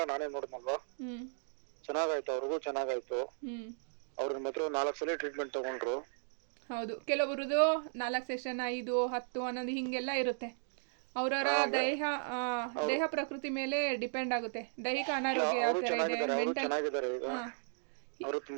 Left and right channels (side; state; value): left; silent; digital silence